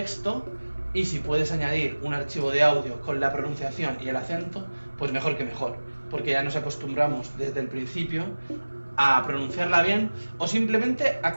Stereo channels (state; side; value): inverted; both; correlation -1.00